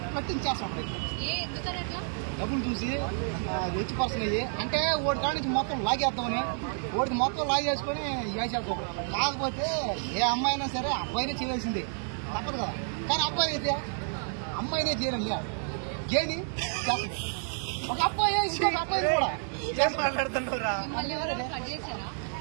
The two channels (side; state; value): left; silent; 58 dB below the other